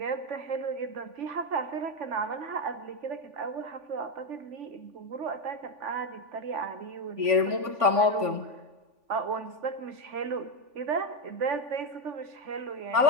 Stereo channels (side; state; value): left; late; 3.5 ms